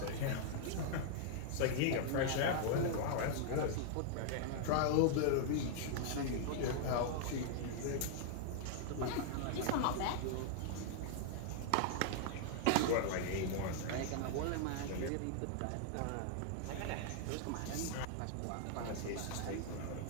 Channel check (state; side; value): different; both; correlation -0.01